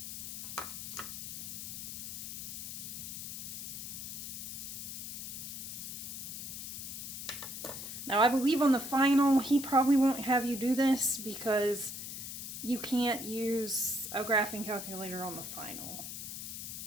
Now, I believe on the final, he probably won't have you do this because you can't use a graphing calculator on the final.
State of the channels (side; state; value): left; noise; hiss, 7 dB below the sound